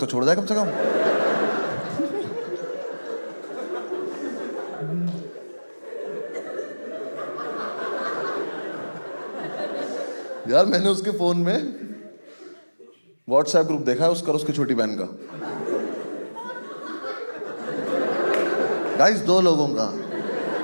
छोड़ जाए कम से कम। यार मैंने उसके फोन में व्हाट्सएप ग्रुप देखा है उसका और उसकी छोटी बहन का। गाइस 2 लोगों का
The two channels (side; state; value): both; inverted; correlation -1.00